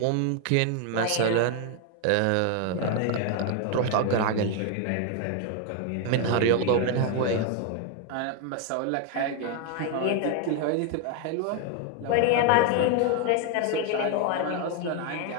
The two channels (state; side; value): different; both; correlation 0.01